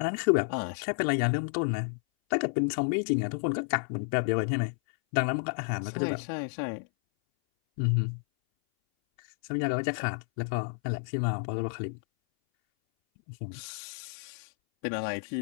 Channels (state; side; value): silent; right; 57 dB below the other